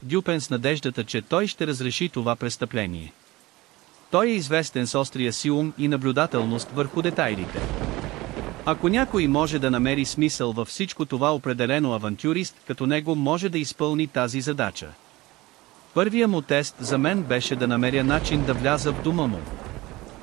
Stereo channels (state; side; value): quieter; left; 19.9 dB